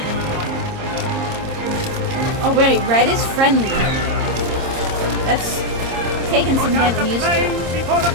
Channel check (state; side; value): late; left; 26 ms